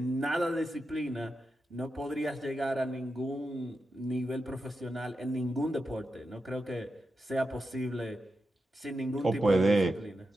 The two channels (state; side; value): normal; both; correlation 0.88